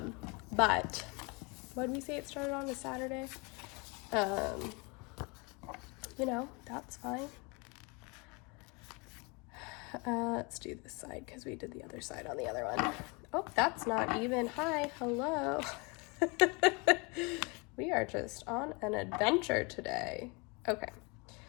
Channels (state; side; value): quieter; right; 29.6 dB